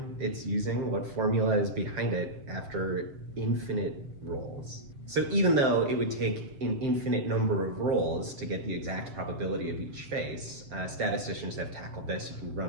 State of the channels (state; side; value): late; left; 7.0 ms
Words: it's using, what formula is behind it after infinite rolls. So even though it would take an infinite number of rolls to get the exact probability of each face, statisticians have tackled this. You can